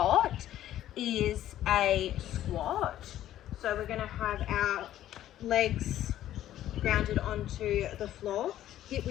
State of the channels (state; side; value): quieter; right; 12.6 dB